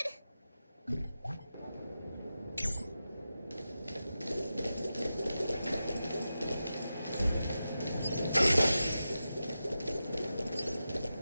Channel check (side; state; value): both; inverted; correlation -0.92